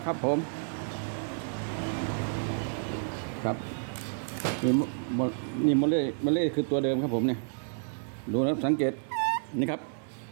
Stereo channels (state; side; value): silent; left; digital silence